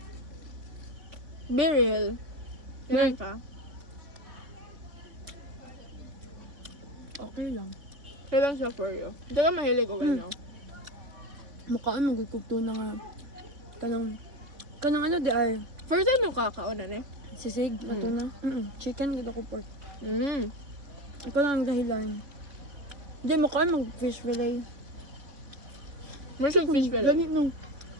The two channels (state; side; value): late; left; 3.5 ms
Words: Be real. Ganun ka. Okay lang. Kailan siya for you? Hindi ka mahilig o gano'n. Mukhaan magkukugto na nga. Kanang ano di ay. First time yung kakaunan eh. Sisig, ato na. Chicken, gud ako pork. Mm. Ikaw lang ang dahilan. Hindi, mukhaan mag-fish fillet. First time fish fillet. Ganit nung.